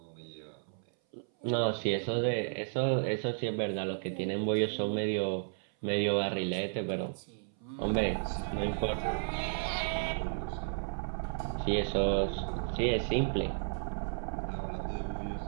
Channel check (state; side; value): silent; left; 56 dB below the other